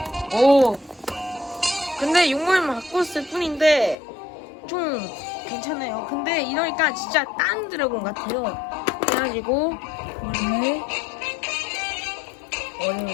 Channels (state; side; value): drops out; right; at 4.0 s